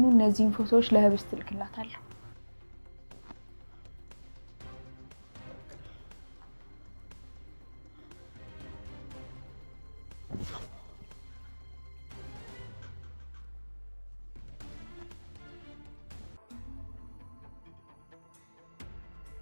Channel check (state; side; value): inverted; both; correlation -1.00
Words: እነዚህን ፎቶዎች ለህብስት ልክላታለሁ።